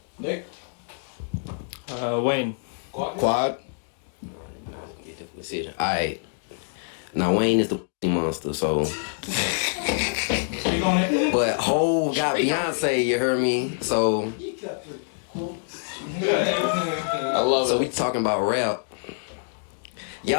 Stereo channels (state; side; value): silent; right; digital silence